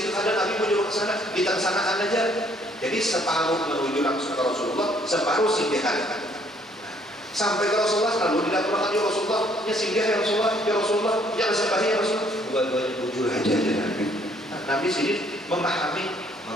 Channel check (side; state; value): both; normal; correlation 0.64